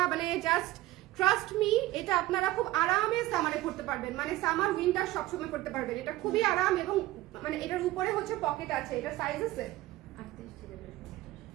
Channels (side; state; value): left; quieter; 17.1 dB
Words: মানে জাস্ট ট্রাস্ট মি, এটা আপনারা খুব আরামে সামারে করতে পারবেন, মানে সামার উইন্টার সবসময় করতে পারবেন। এটা খুবই আরাম এবং মানে এটার উপরে হচ্ছে পকেট আছে। এটা সাইজ আছে